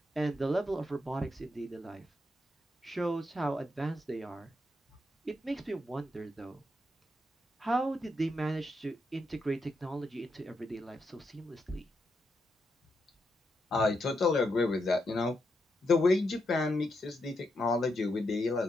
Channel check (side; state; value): both; normal; correlation 0.82